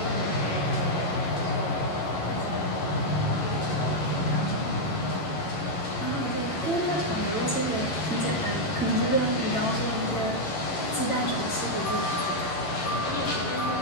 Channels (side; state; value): right; late; 11 ms